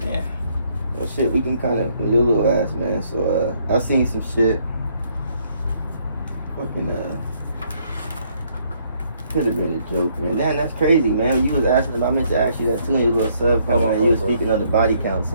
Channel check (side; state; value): both; inverted; correlation -0.68